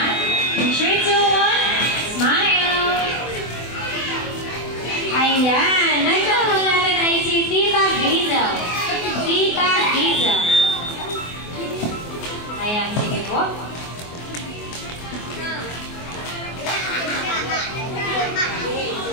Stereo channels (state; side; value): late; right; 24 ms